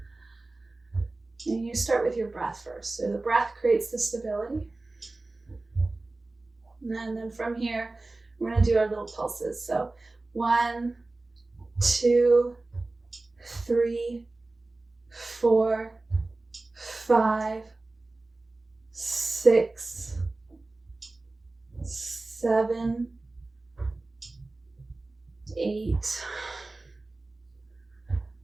And you start with your breath first. So the breath creates the stability. And then from here, we're going to do our little pulses. So 1, 2, 3, 4, 5, 6, 7, 8,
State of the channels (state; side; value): quieter; left; 3.2 dB